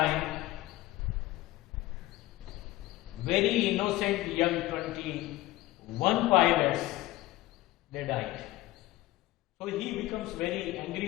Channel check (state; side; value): quieter; right; 17.6 dB